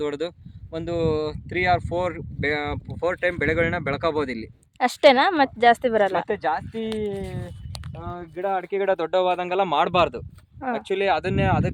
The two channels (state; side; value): identical; both; correlation 1.00